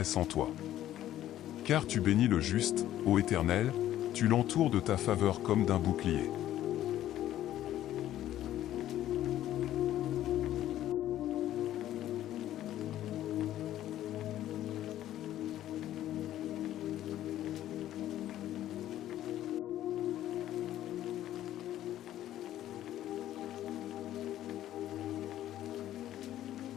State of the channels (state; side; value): quieter; right; 12.8 dB